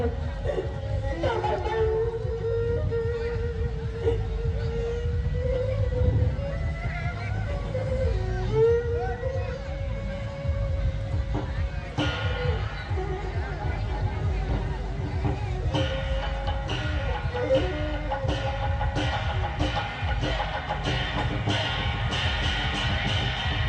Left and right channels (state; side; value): identical; both; correlation 1.00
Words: chào các bạn